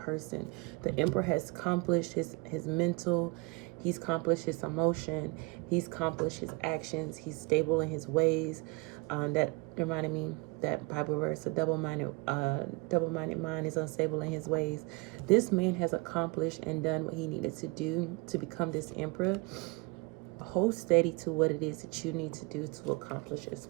The Emperor has accomplished his mental. He's accomplished his emotion. He's accomplished his actions. He's stable in his ways. That reminded me that Bible verse: a double-minded mind is unstable in his ways. This man has accomplished and done what he needed to do to become this Emperor. Hold steady to what it is that you need to do to accomplish as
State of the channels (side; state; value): left; quieter; 27.4 dB